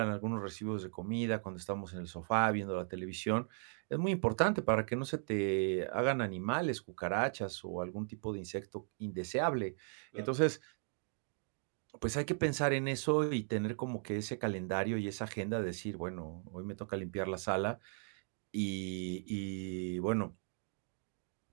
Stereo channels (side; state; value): left; silent; 53 dB below the other